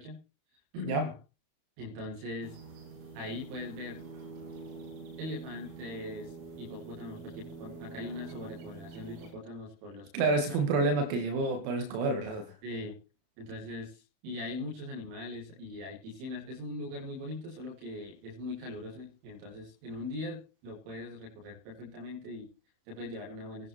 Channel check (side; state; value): left; late; 31 ms